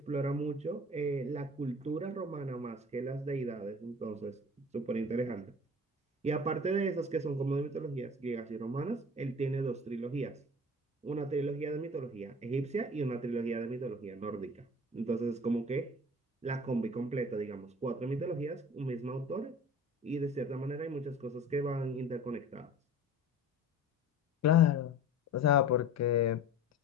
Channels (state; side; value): normal; both; correlation 0.41